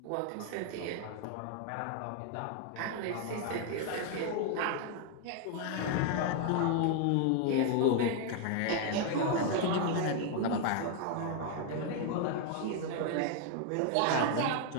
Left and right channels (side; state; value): both; different; correlation 0.00